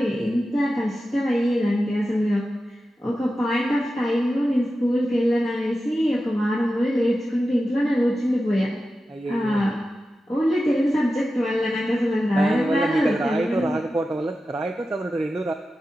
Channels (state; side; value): normal; both; correlation 0.92